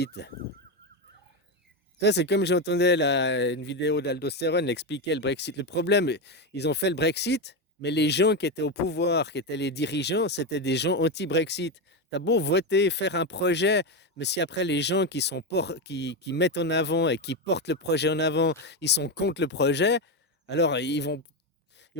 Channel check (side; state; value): both; normal; correlation 0.11